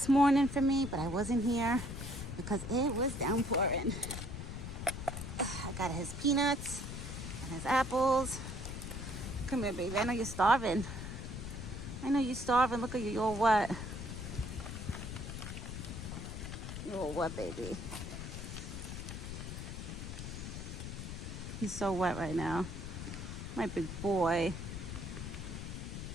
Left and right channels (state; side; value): noise; left; rumble, 7 dB below the sound